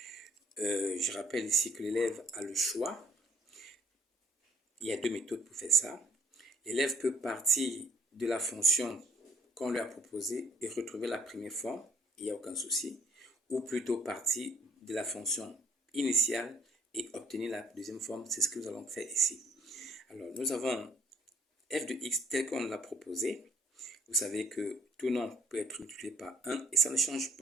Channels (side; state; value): both; normal; correlation 0.59